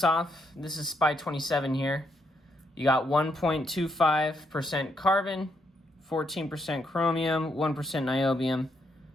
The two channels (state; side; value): normal; both; correlation 0.77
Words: off, this is SPY-27 here. You got 1.25% carbon, 14% chromium, 1% niobium,